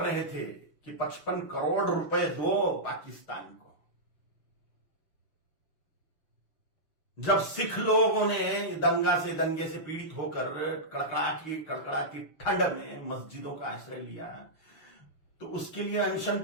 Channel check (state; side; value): late; right; 6.4 ms